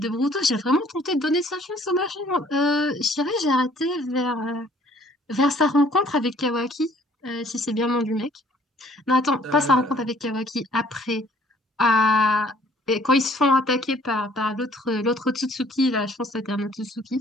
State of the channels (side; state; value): both; normal; correlation 0.59